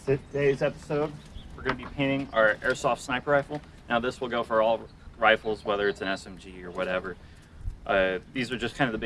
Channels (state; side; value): identical; both; correlation 1.00